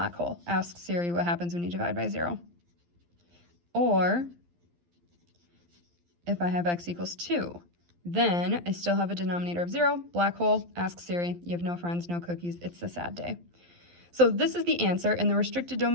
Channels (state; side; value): late; left; 12 ms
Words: hole. Ask Siri what happens when you divide by 0. Or if I have x equals 2, then I still have a denominator of 0, black hole, ask Siri. You have no friends, no cookies. It's a sad day. So this is the answer, and the restricted